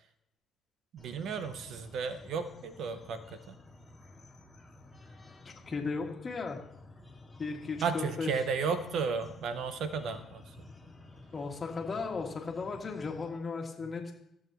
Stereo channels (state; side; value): normal; both; correlation 0.63